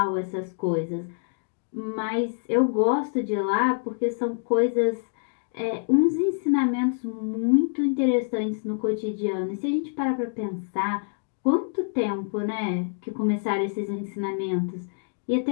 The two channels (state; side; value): silent; right; digital silence